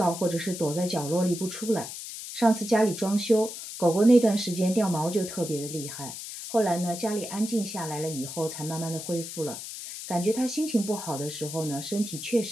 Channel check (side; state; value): left; noise; hiss, 9 dB below the sound